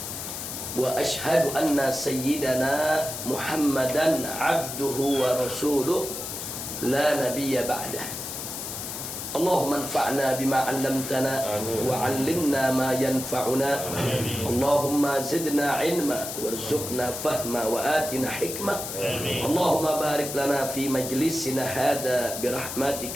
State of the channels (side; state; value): left; noise; hiss, 7 dB below the sound